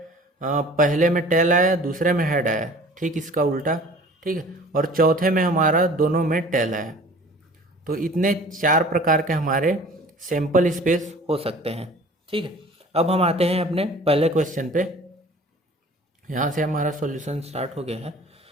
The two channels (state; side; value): normal; both; correlation 0.47